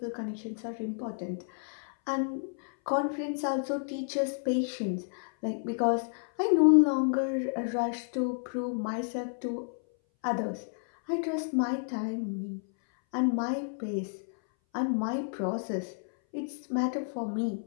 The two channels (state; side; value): silent; right; 57 dB below the other